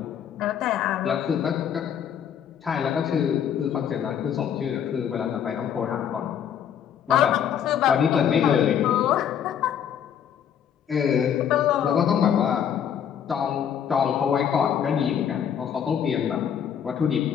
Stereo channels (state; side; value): quieter; right; 8.7 dB